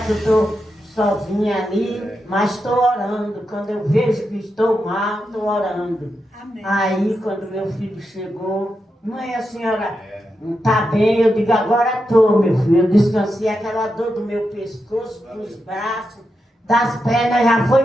eu estou sozinha ali, mas estou orando. Quando eu vejo que estou mal, estou orando. Amém. Aí, quando meu filho chegou, mãe, a senhora está bem? Eu digo, agora estou, meu filho. Eu descansei, aquela dor do meu pescoço, dos braços, das pernas, já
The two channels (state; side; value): normal; both; correlation 0.87